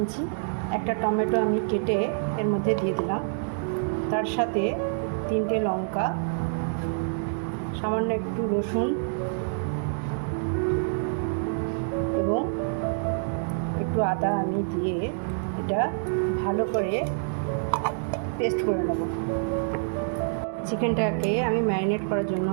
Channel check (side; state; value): left; silent; digital silence